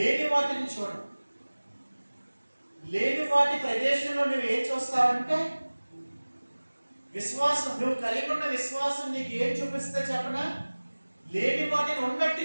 వాటిని చూడవు. లేని వాటి ప్రదేశంలో నువ్వు ఏం చూస్తావంటే విశ్వాసం. నువ్వు కలిగి ఉన్న విశ్వాసం నీకు ఏం చూపిస్తే చెప్పనా? లేని వాటిని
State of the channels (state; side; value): inverted; both; correlation -1.00